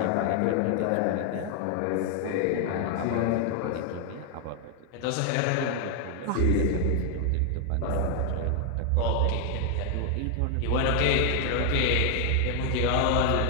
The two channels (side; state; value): both; different; correlation 0.00